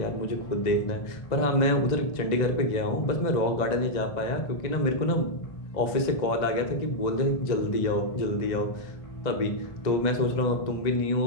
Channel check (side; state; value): right; late; 1.9 ms